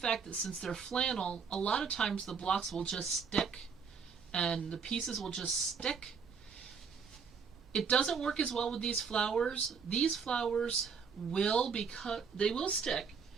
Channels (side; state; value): left; quieter; 6.0 dB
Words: that since they're flannel, a lot of times the blocks will just stick and the pieces will just stick. It doesn't work as well with these flowers. These flowers will stick